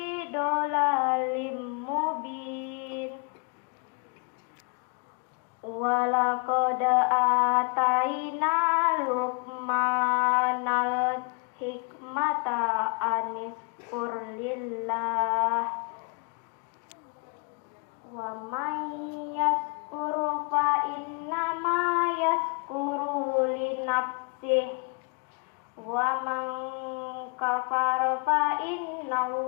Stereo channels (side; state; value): right; quieter; 36.1 dB